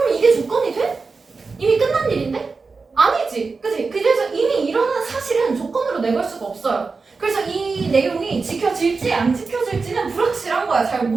이게 조건이 돼? 이미 끝난 일인데? 아니지. 그치? 그래서 이미 일어난 사실은 조건으로 내걸 수가 없어요. 그래서 이 내용이 지켜질지 안 지켜질지는 불확실한 거야. 잘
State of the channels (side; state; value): left; quieter; 4.4 dB